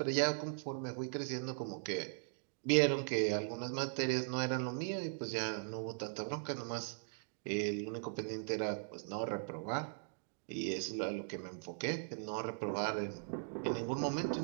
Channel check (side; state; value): left; silent; digital silence